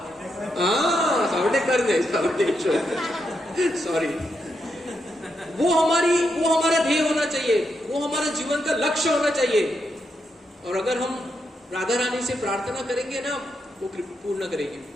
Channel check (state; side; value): normal; both; correlation 0.82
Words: सावरडेव कर गए, सावरडेश्वर सॉरी। वो हमारा ध्येय होना चाहिए, वो हमारा जीवन का लक्ष्य होना चाहिए। और अगर हम राधा रानी से प्रार्थना करेंगे ना, वो पूर्ण करेंगे,